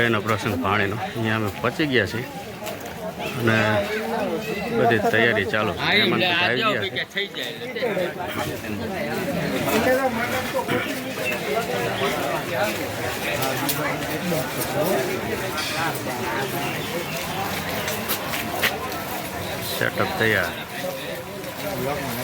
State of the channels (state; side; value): identical; both; correlation 1.00